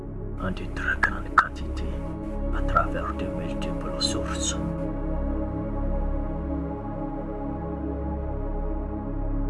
en de très grandes quantités à travers de multiples sources.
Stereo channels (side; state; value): both; identical; correlation 1.00